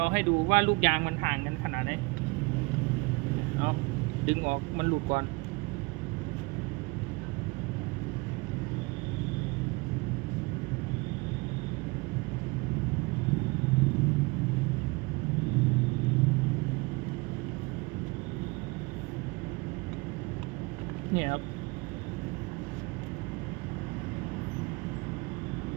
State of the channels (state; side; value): quieter; left; 26.2 dB